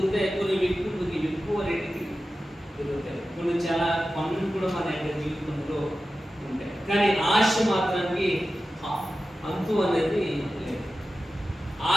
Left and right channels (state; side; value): normal; both; correlation 0.93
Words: కొన్ని ఎక్కువ రేటుకి దొరుకుతాయి, కొన్ని చాలా పనులు కూడా మన యొక్క జీవితంలో ఉంటాయి. కానీ ఆశ మాత్రానికి అంతు అనేది లేదు.